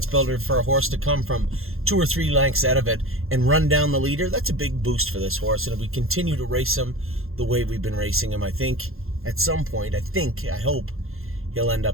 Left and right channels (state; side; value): late; left; 0.61 ms